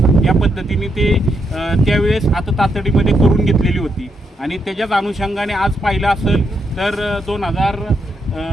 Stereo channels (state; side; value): normal; both; correlation 0.79